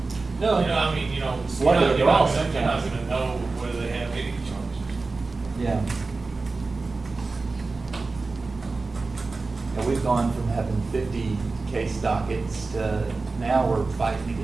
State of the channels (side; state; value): left; quieter; 3.8 dB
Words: No. You know, I mean, you know, What are you're they all not sometimes? gonna know whether they have any charges. Yeah. And we've gone from having 50 case dockets to now we're fighting to